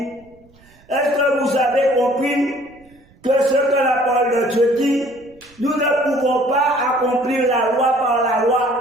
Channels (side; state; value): right; noise; rumble, 29 dB below the sound